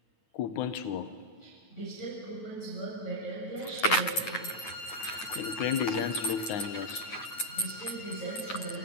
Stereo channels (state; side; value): late; right; 9.2 ms